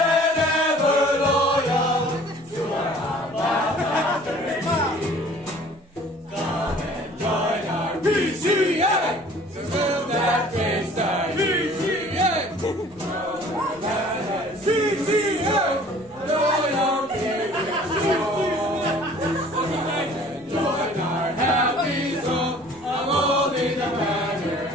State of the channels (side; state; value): both; normal; correlation 0.51